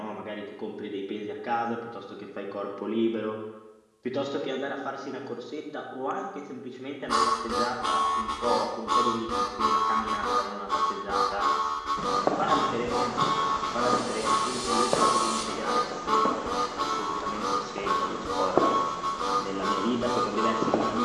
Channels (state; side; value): identical; both; correlation 1.00